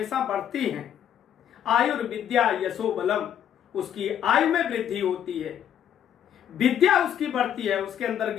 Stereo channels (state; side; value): quieter; right; 9.7 dB